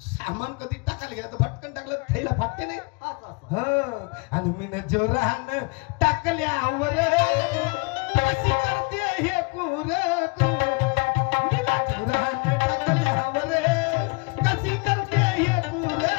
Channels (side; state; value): right; quieter; 30.2 dB